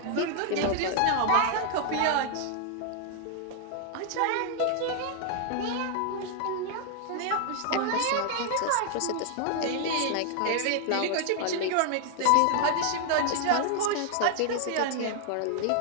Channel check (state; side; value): different; both; correlation 0.00